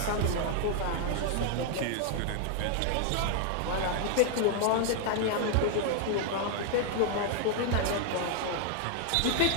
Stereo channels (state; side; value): different; both; correlation 0.00